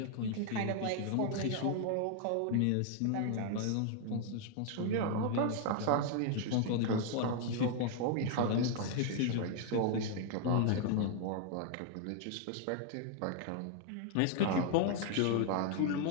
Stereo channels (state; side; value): different; both; correlation 0.00